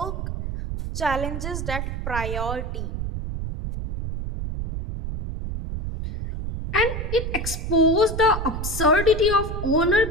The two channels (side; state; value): right; noise; rumble, 4 dB below the sound